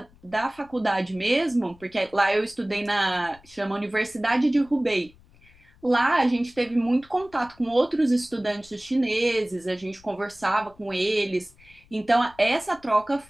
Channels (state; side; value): noise; left; rumble, 27 dB below the sound